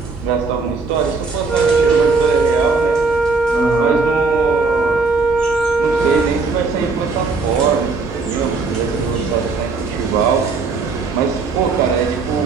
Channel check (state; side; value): quieter; left; 4.3 dB